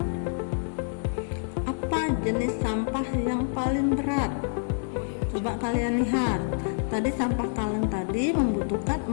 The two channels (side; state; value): right; silent; digital silence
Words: apa jenis sampah yang paling berat? Coba kalian lihat, tadi sampah kaleng tadi membutuhkan